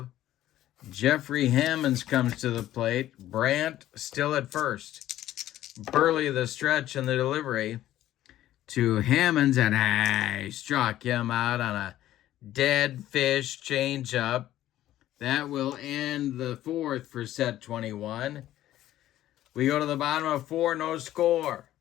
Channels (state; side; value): quieter; right; 13.5 dB